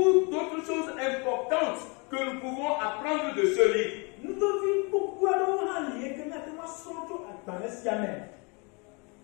d'autres choses importantes que nous pouvons apprendre de ce livre.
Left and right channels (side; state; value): right; quieter; 31.4 dB